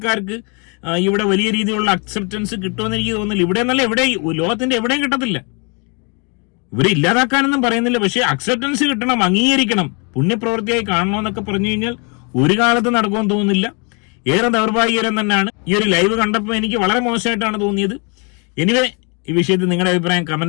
ഇവിടെ വലിയ രീതിയിലുള്ള അക്സെപ്റ്റൻസ് കിട്ടുമെന്ന് എനിക്ക് തോന്നുന്നില്ല. ഇവിടെ എന്നല്ല, ഇവിടെ ലോകത്തിന്റെ എവിടെയും കിട്ടത്തില്ല. ഇവരെ ഇല്ലാതാക്കാനൊന്നും പറയുന്നില്ല. പക്ഷെ അക്സെപ്റ്റൻസ് കിട്ടണം, അംഗീകരിക്കണം, പുണ്യപ്രവൃത്തിയായി കാണണമെന്നൊക്കെ പറഞ്ഞു കഴിഞ്ഞാൽ ഒരു കാലത്ത് നടക്കുമെന്ന് തോന്നുന്നില്ല. ഏറെ ദൗർഭാഗ്യകരം തന്നെയാണ്. ഈ ഒരു ലൈവ് കണ്ടപ്പോൾ എനിക്ക് വളരെ മോശമായിട്ടാണ് തോന്നിയത്. എനിവേ, ഈ വിഷയത്തിൽ നിങ്ങളുടെ അഭിപ്രായം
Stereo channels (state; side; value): quieter; right; 34.3 dB